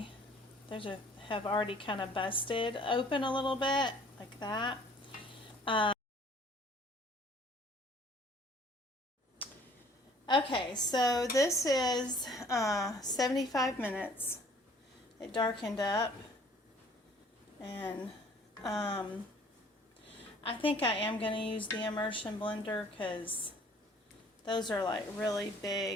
kind of busted open a little bit, like that. Okay, so this is 75 minutes. It darkened up, and I think I am going to use the immersion blender, because those are like really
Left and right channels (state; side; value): normal; both; correlation 0.55